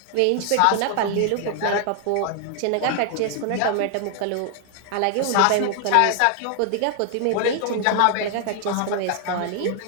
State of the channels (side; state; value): both; different; correlation 0.00